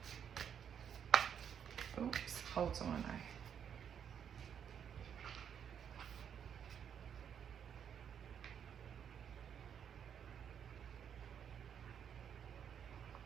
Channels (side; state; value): left; quieter; 8.2 dB